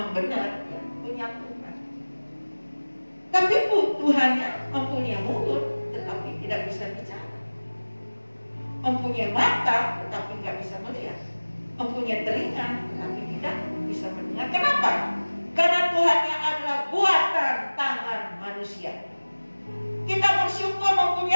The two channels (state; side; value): inverted; both; correlation -1.00